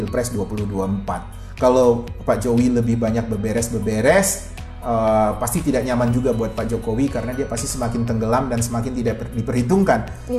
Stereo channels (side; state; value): both; identical; correlation 1.00